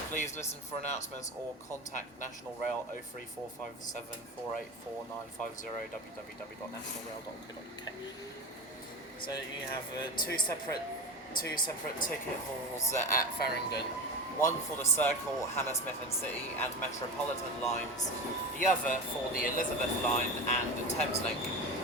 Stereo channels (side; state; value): both; normal; correlation 0.26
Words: Please listen for announcements or contact National Rail 03457 484950 www.nationalrail.co.uk. So you have two separate ticket halls at Farringdon. One for the Circle, Hammersmith and City and Metropolitan lines. The other for the Elizabeth line and the Thameslink.